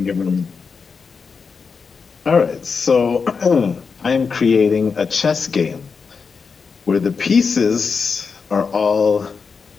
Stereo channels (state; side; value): quieter; right; 5.3 dB